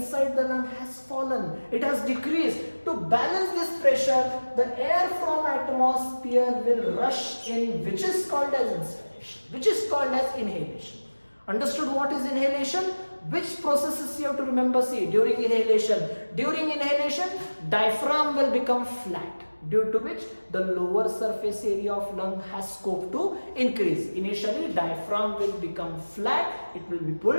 the lung has fallen. It has decreased. To balance this pressure, the air from atmosphere will rush in, which is called as inspiration, which is called as inhalation. Understood what is inhalation? Which processes you have to remember? See, during inhalation, diaphragm will become flat, due to which the lower surface area of lung has scope to increase. Initially, diaphragm will become flat, it will be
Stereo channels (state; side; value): inverted; both; correlation -1.00